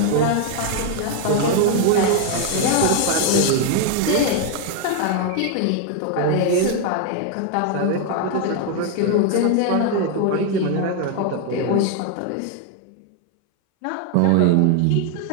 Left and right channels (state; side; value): different; both; correlation 0.01